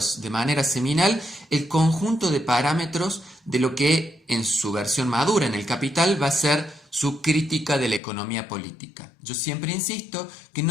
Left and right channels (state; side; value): drops out; right; at 8.0 s